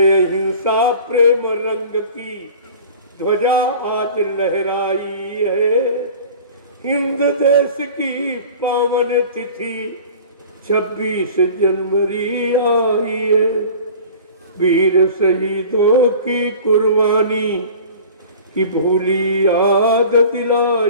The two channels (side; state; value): both; inverted; correlation -0.42